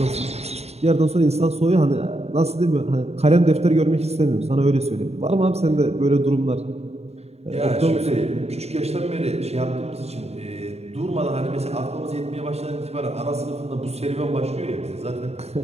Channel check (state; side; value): late; left; 0.30 ms